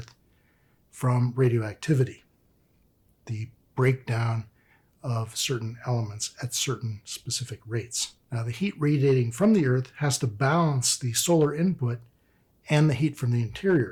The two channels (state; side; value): identical; both; correlation 1.00